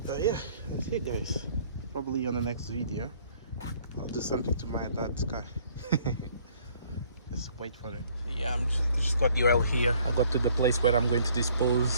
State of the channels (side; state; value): both; inverted; correlation -0.60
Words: Yeah, that's it, guys. Probably on the next video I'll do something to my dad's car. Let's wait for it. So yeah, I'm just got the oil here. I got to the place where I'm going to